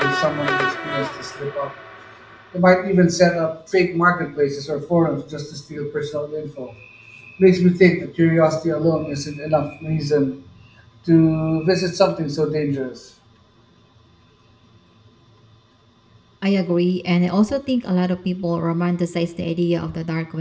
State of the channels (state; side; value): identical; both; correlation 1.00